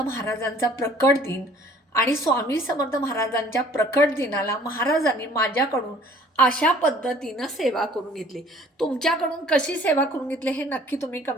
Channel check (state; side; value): normal; both; correlation 0.54